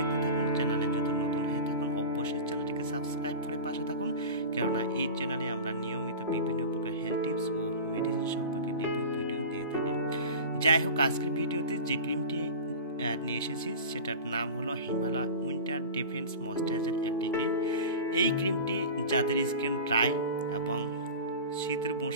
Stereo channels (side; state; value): both; inverted; correlation -0.32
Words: থাকুন। চ্যানেলে যদি নতুন হয়ে থাকুন অবশ্যই চ্যানেলটিকে সাবস্ক্রাইব করে পাশে থাকুন, কেননা এই চ্যানেলে আমরা নিয়মিত বিভিন্ন প্রকার হেলথ টিপস ও মেডিসিন সম্পর্কে রিভিউ ভিডিও দিয়ে থাকি। যাই হোক, আজকের ভিডিওতে যে ক্রিমটি নিয়ে এসেছি সেটার নাম হলো হিমালয় উইন্টার ডিফেন্স ময়েশ্চারাইজার একটি ক্রিম। এই ক্রিমটি যাদের স্কিন ড্রাই এবং শীতের